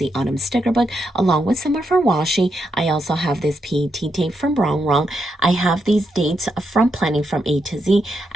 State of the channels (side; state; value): both; normal; correlation 0.82